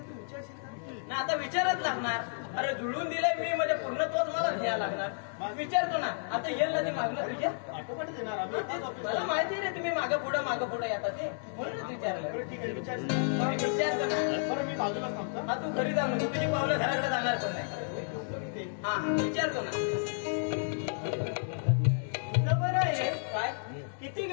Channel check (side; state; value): right; silent; digital silence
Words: तू विचारशील का? ना आता विचारच लागणार. अरे जुळून दिलंय मी म्हणजे पूर्ण तोच मला घ्यायला लागणार. विचारतो ना आता येईल ना ते मागणं तुझ्या. आटोपाट देणार आम्ही. मला माहिती रे तुम्ही मागं पुढं येतात ते म्हणूनच विचारलं. बरं ठीक आहे विचार. विचारतो ना. बरं मी बाजूला थांबतो. हा तू घरी जा म्हणजे तुझी पावलं घराकडे जाणार पण नाही. हा विचारतो ना. बरं आहे. काय किती